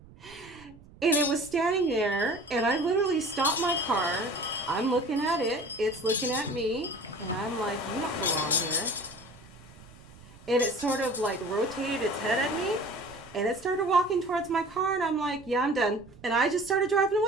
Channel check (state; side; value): noise; right; rumble, 22 dB below the sound